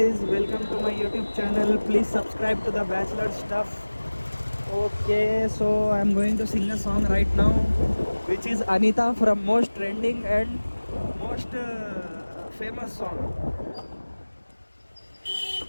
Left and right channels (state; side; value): inverted; both; correlation -1.00